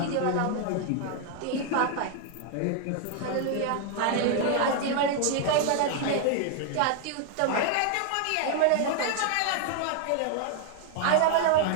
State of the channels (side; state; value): both; different; correlation 0.00